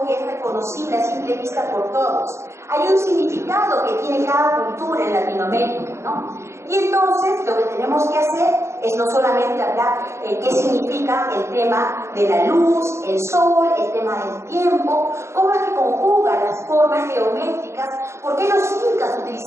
que es reconocible a simple vista por todos, hay un significado que tiene cada cultura en Latinoamérica, ¿no? Y entonces lo que tenemos que hacer es no solamente hablar qué significa el tema de la luz, el sol, el tema del tiempo, cómo es que conjugan las formas geométricas, por qué los incas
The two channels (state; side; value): late; left; 0.13 ms